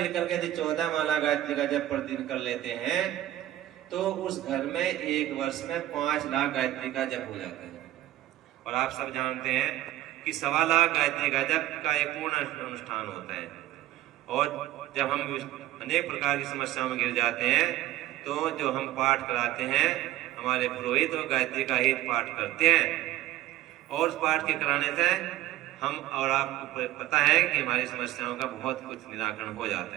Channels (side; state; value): left; quieter; 14.7 dB